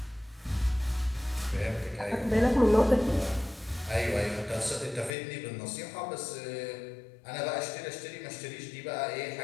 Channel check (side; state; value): right; drops out; at 5.1 s